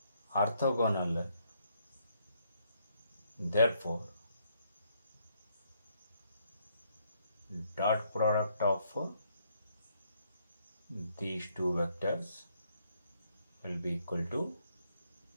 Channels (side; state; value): both; inverted; correlation -0.71